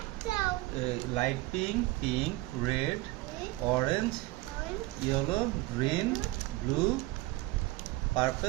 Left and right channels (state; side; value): quieter; left; 19.8 dB